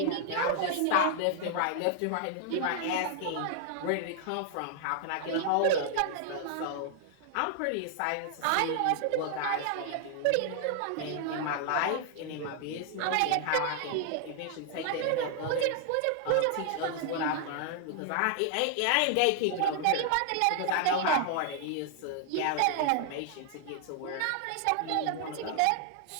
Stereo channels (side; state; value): both; different; correlation 0.00